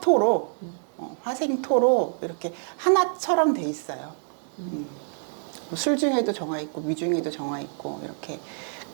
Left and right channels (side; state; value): left; silent; digital silence